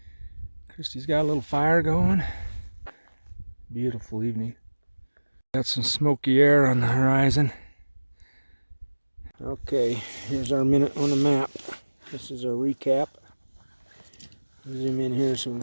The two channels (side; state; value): both; inverted; correlation -1.00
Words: Kristy's got a little fire going. Beautiful evening. Got some smoky air on the horizon. Okay, here's our minute on the map. This is our recap. Zoom in here so we